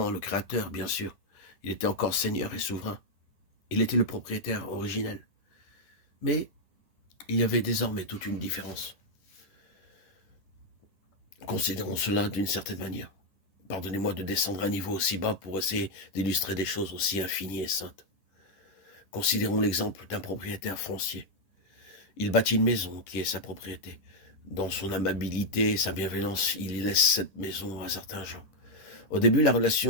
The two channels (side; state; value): right; late; 10 ms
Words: le Créateur, bien sûr. Il était encore Seigneur et souverain. Il était le propriétaire originel. Mais il y avait désormais toute une différence. Considérons cela d'une certaine manière. Pardonnez-moi de descendre à un niveau aussi bas pour essayer d'illustrer des choses aussi infinies et saintes. Considérons l'exemple d'un propriétaire foncier. Il bâtit une maison qui est sa propriété. Dans son amabilité et sa bienveillance, il laisse cette maison à certains gens. Au début, la